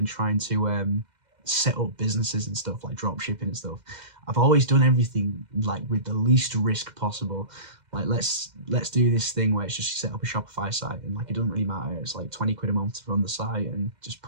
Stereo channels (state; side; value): late; left; 2.1 ms